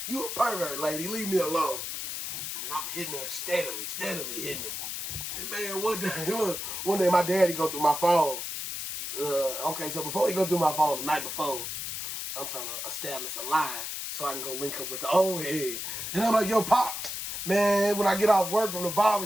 You a pervert, lady. Leave me alone. And then I'm hitting her steadily hitting her. And man, one day my daddy go through my phone. Okay, so before he go through my phone the night before, I'm trying to establish a line so I can go link up with the old head. And I'm like, yo, Pops, man, when I get off work from the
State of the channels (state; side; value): noise; left; hiss, 5 dB below the sound